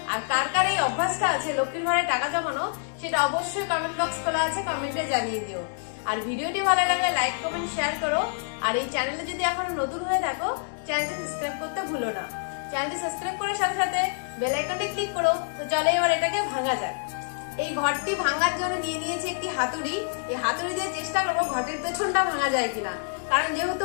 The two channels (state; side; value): silent; right; digital silence